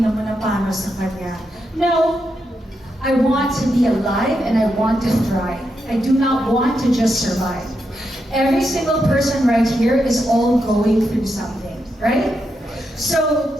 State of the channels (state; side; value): normal; both; correlation 0.84